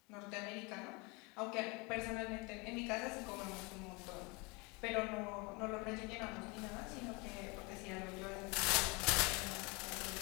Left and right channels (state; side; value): quieter; right; 28.3 dB